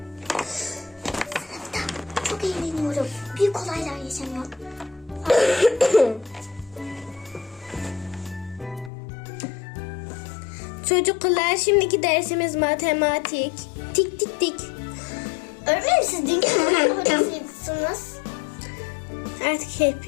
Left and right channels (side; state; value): right; drops out; at 8.9 s